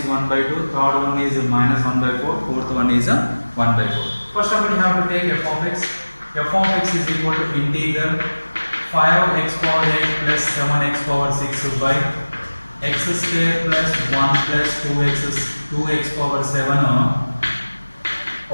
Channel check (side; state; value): both; inverted; correlation -1.00